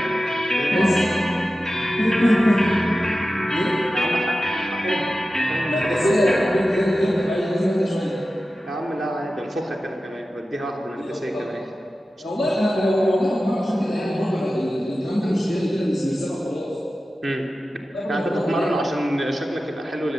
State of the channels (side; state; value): both; normal; correlation 0.94